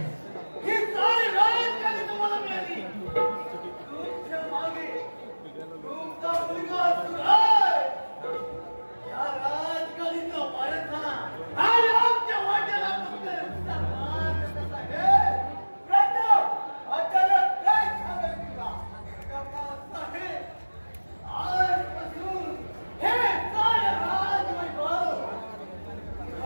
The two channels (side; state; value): both; inverted; correlation -1.00